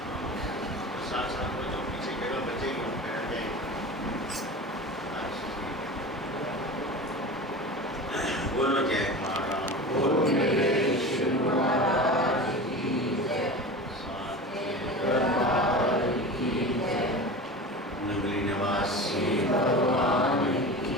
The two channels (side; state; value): both; normal; correlation 0.31